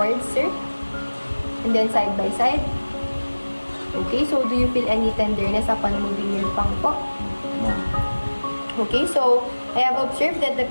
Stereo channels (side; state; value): both; inverted; correlation -1.00